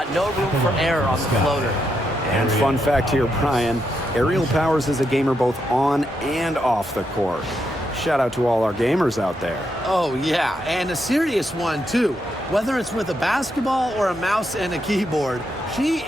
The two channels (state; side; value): normal; both; correlation 0.81